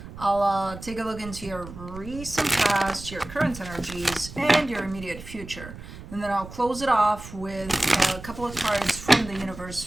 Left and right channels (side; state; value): right; noise; rumble, 14 dB below the sound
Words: I'll take a look into your recent past, your current energies, and your immediate future. And then I'll close it off with a couple of cards from the universe